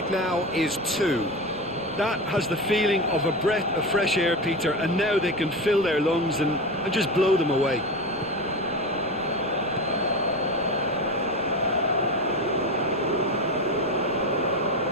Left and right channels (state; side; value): noise; right; rumble, 21 dB below the sound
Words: now is 2. That has the feeling of a breath of fresh air, Peter, and now they can fill their lungs and just blow them away.